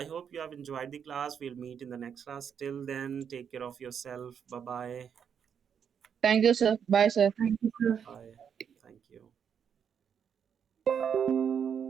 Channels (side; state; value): left; quieter; 7.7 dB